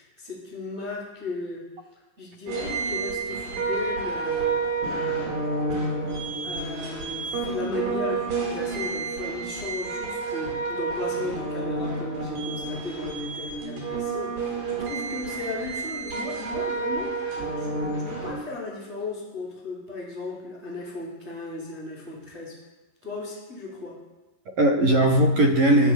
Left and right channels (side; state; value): left; late; 11 ms